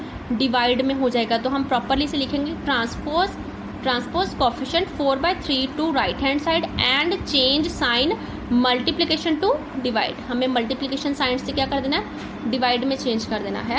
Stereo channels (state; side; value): identical; both; correlation 1.00